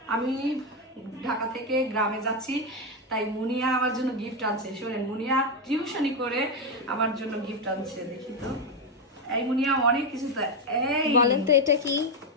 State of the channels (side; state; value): both; normal; correlation 0.07